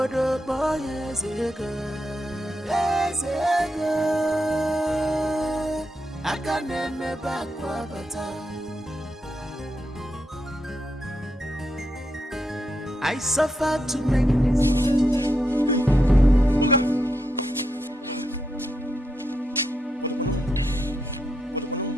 Boy Ezego, I can name back Wabata. I suffer to make this.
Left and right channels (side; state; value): both; normal; correlation 0.83